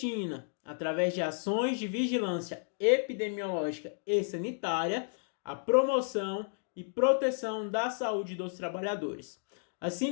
através de ações de vigilância epidemiológica e sanitária, à promoção e proteção da saúde dos trabalhadores,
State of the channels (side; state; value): right; silent; digital silence